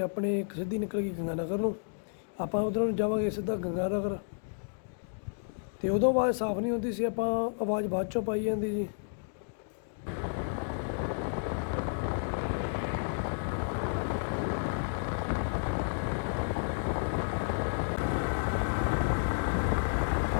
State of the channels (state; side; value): silent; right; digital silence